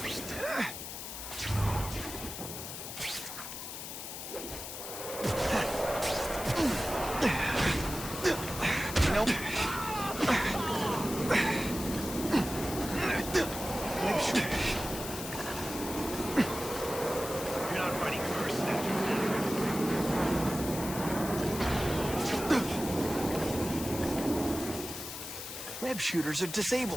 Web shooters are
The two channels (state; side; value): noise; left; hiss, 8 dB below the sound